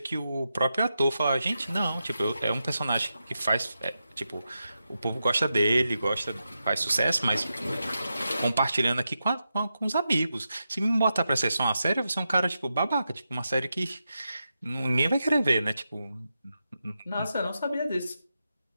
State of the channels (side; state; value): both; inverted; correlation -0.88